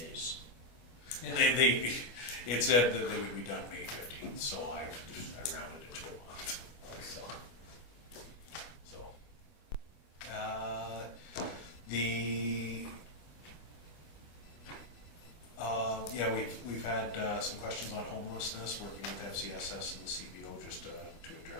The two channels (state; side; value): late; right; 25 ms